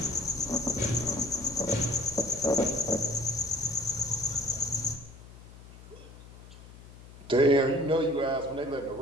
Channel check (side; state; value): left; noise; hum, 18 dB below the sound